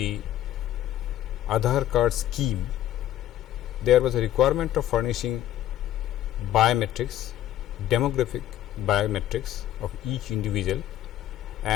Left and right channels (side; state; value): right; quieter; 12.6 dB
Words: Aadhaar card scheme, there was a requirement of furnishing biometrics, demographic biometrics of each individual,